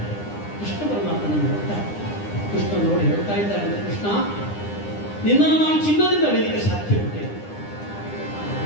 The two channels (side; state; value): right; late; 9.9 ms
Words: ಕೃಷ್ಣ ಪರಮಾತ್ಮನನ್ನು ನೋಡ್ತಾರೆ. ಕೃಷ್ಣ ನೋಡಿ ಹೇಳ್ತಾ ಇದ್ದಾರೆ, ಕೃಷ್ಣ, ನಿನ್ನನ್ನು ನಾನು ಚಿನ್ನದಿಂದ ಅಳಿಲಿಕ್ಕೆ ಸಾಧ್ಯ ಉಂಟೆ.